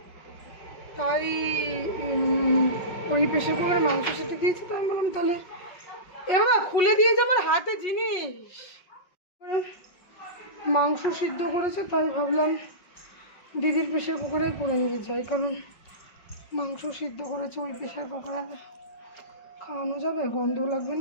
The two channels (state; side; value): late; right; 5.3 ms